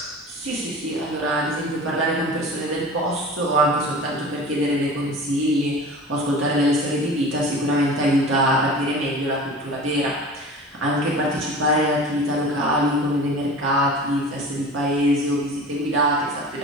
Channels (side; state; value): both; normal; correlation 0.37